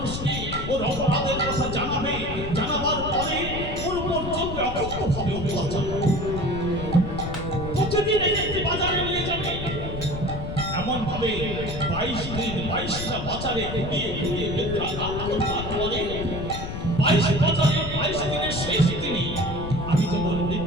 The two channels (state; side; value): noise; left; rumble, 6 dB below the sound